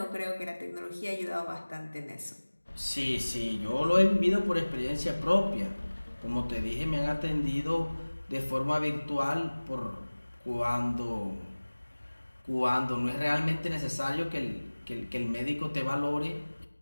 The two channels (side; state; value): both; inverted; correlation -1.00